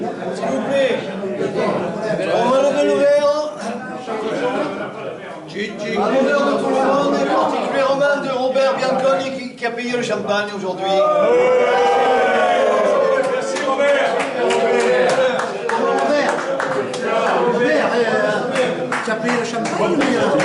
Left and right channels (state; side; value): identical; both; correlation 1.00